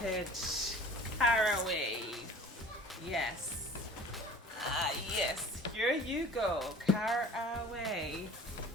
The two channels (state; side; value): normal; both; correlation 0.45